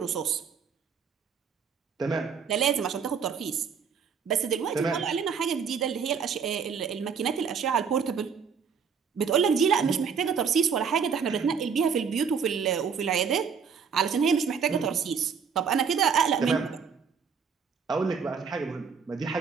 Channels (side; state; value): left; quieter; 6.4 dB